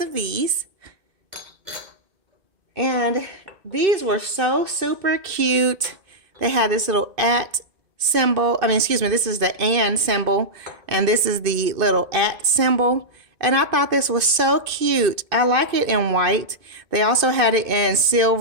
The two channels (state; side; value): late; left; 2.5 ms